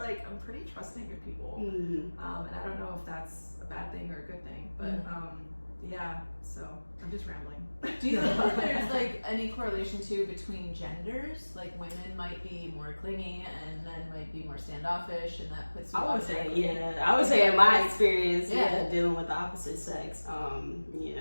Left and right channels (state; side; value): inverted; both; correlation -1.00